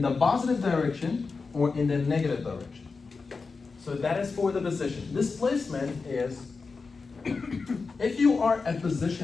the positive direction or in the negative direction. So that is for the position. Displacement is, if you are at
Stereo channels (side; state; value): right; quieter; 4.5 dB